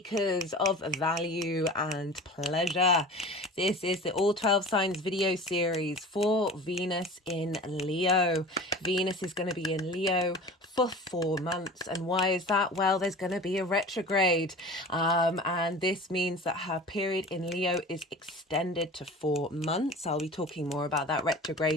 of value and pleasure. This is the All 12 Signs video series for Venus in Leo. Venus is going to be in Leo for 4 months. And why is that? Well, there's going to be a retrograde. And this means that her period in Leo is extended to 4 months. I'll be talking more about that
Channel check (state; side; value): normal; both; correlation 0.38